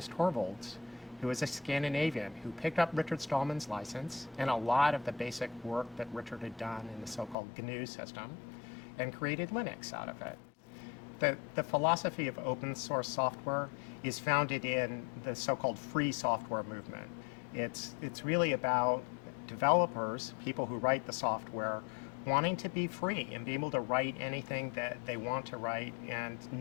Torvalds, who was a Scandinavian who picked up Richard Stallman's license and a lot of the basic work that Richard had done in the so-called GNU system and created Linux out of it. The philosophy of open source software is founded in the so-called free software movement. It's really about developers, people who write the software, wanting to be free and be able to write anything that they want to write and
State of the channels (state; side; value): drops out; right; at 7.4 s